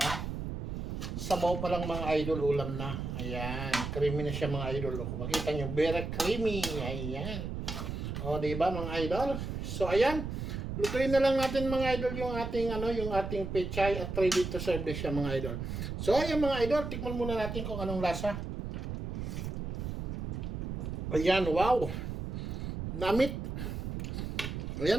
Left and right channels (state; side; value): noise; right; rumble, 4 dB below the sound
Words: Sabaw pa lang mga idol, ulam na. Ayan, creamy na siya mga idol. Kung makita nyo, very creamy. Ayan. O diba mga idol? So ayan, lutuin na lang natin mga idol yung ating yung ating pechay at ready to serve na siya mga idol. So ayan mga idol, tikman muna natin kung anong lasa. Ayan, wow. Namit.